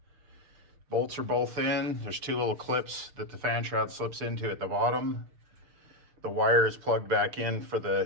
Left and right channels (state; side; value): late; left; 6.7 ms